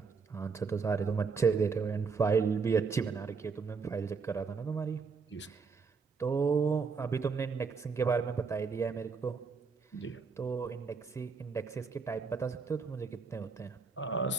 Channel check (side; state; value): left; quieter; 5.1 dB